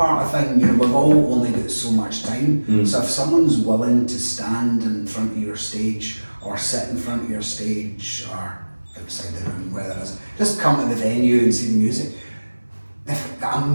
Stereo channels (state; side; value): inverted; both; correlation -1.00